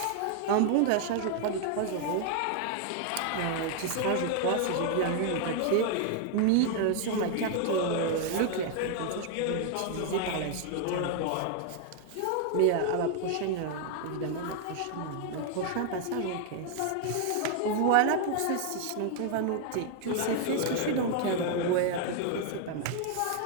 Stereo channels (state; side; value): different; both; correlation 0.00